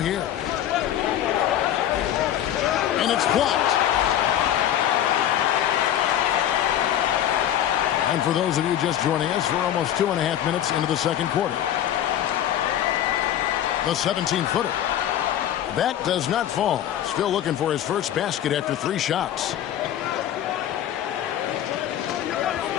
And it's blocked. And for those of you just joining us, we're almost 2.5 minutes into the second quarter. The 17-footer. That does not fall. Still looking for his first basket after 3 shots.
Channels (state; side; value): quieter; right; 11.2 dB